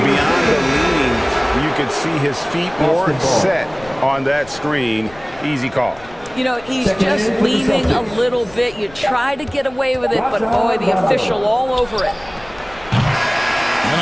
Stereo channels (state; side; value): noise; left; rumble, 22 dB below the sound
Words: the leaning, you could see his feet more set on that screen. Easy call. You know, he's just leaning a little bit. You try to get away with it, but boy, the official all over it. And